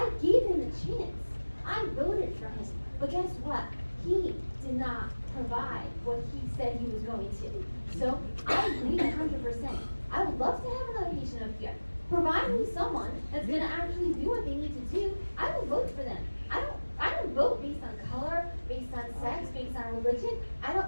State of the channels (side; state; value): both; inverted; correlation -1.00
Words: gave him a chance. I voted for him. But guess what? He did not provide what he said he was going to. So I agree 100%. I would love to have another patient up here. Provide me someone that's gonna actually do what they need to do. I will vote for them. I don't vote based on color, based on sex, based on religion.